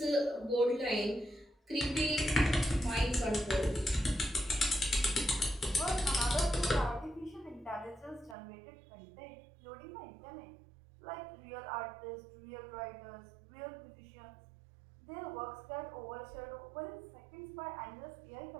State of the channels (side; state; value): left; drops out; at 8.3 s